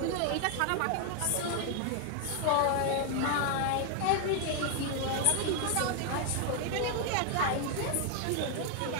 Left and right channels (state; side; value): different; both; correlation 0.00